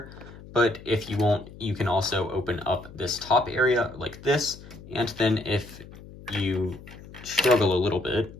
But if you want, you can also open up this top area like this, and then if you struggle a little bit,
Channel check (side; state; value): left; noise; hum, 17 dB below the sound